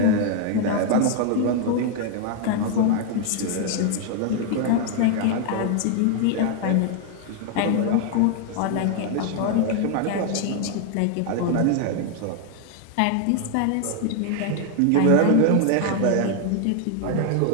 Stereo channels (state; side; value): different; both; correlation 0.00